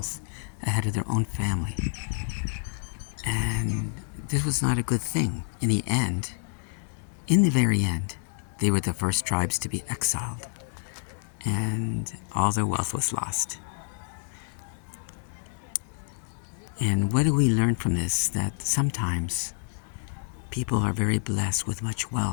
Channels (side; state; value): right; silent; 59 dB below the other